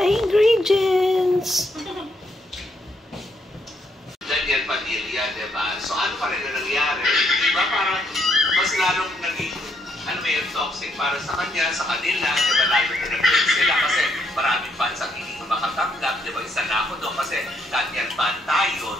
ingredients. Daniel Padilla, diba? So ano pa rin na nangyari? Diba parang mas lalong naging, ano may toxic para sa kanya, sa kanila, diba lalo na nag-break sila kasi maraming fans ang hindi makatanggap, diba? Isa na ako doon kasi Daniel fan tayo,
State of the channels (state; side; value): normal; both; correlation 0.74